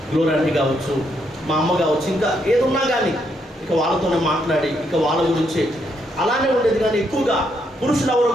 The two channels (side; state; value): both; normal; correlation 0.76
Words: గ్లోర్ ఆంటీ కావచ్చు, మా అమ్మ కావచ్చు, ఇంకా ఏదున్నా కానీ ఇక వాళ్ళతోనే మాట్లాడి ఇక వాళ్ళ గురించి అలానే ఉండేది. కానీ ఎక్కువగా పురుషులు ఎవరు